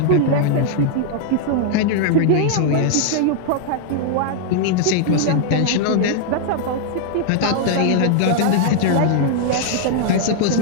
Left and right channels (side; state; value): both; different; correlation 0.00